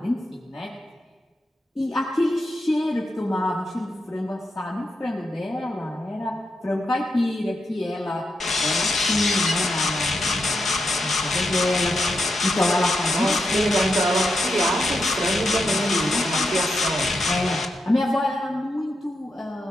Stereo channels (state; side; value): normal; both; correlation 0.85